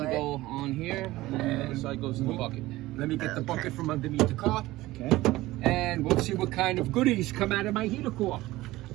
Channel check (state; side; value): quieter; left; 17.9 dB